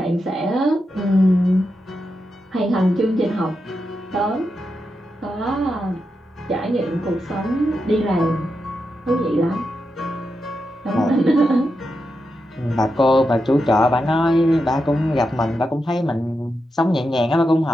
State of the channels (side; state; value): both; normal; correlation 0.87